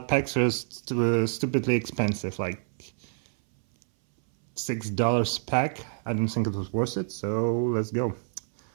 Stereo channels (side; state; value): left; silent; 59 dB below the other